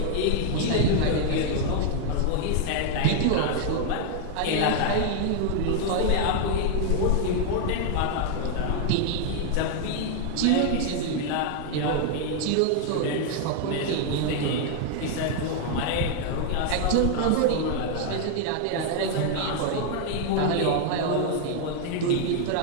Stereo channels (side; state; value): both; different; correlation 0.00